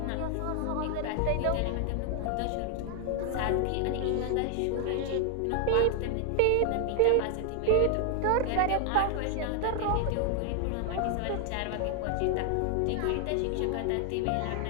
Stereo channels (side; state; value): both; different; correlation 0.00